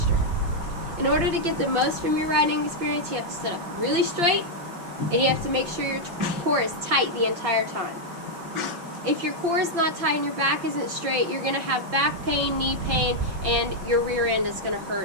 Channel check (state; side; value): late; left; 5.8 ms